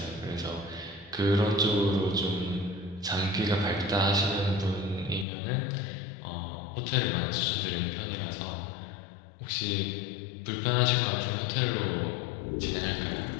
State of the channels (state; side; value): drops out; right; at 5.2 s